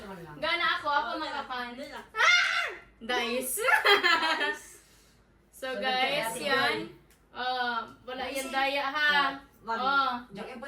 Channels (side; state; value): both; identical; correlation 1.00